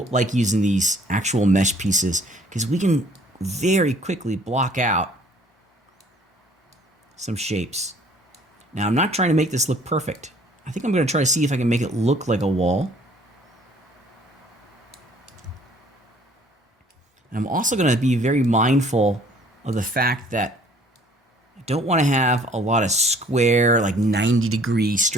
like using these actual mesh pieces, because we can very quickly block out some shapes. Now, I'm not trying to make this look perfect. I think I'm going to try to see if I can make it look like a wall. I'm also going to be very mindful of the fact that I don't want to have a lot of square, like 90-degree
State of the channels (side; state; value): both; normal; correlation 0.56